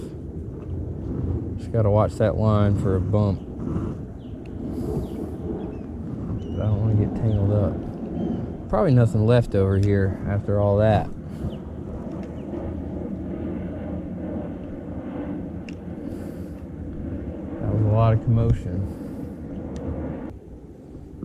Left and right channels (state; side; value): identical; both; correlation 1.00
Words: Just gotta watch that line for a bump. But I don't want to get tangled up. Probably nothing left over here after all that. That was a lot of commotion.